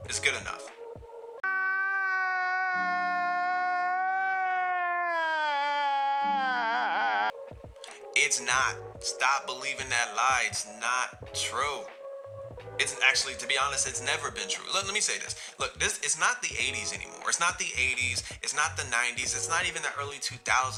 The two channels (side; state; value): both; identical; correlation 1.00